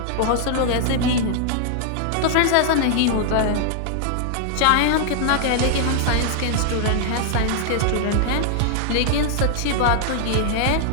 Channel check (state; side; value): different; both; correlation -0.01